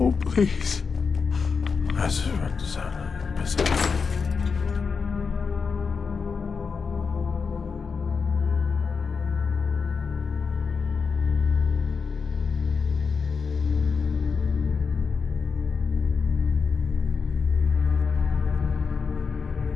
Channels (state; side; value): quieter; right; 5.3 dB